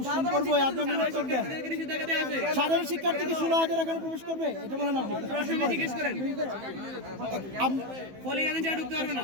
করবো, আপনি উত্তর দেন। সাধারণ শিক্ষার্থীকে 16,000 এখানে প্রবেশ করবে, এটা বলেন আপনি। প্রশ্ন জিজ্ঞেস করেন। পোলিং এজেন্ট যারা ঢুকতে পারবে না।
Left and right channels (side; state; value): left; late; 15 ms